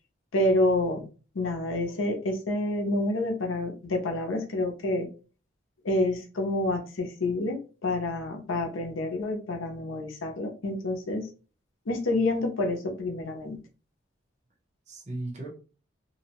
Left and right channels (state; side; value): normal; both; correlation 0.40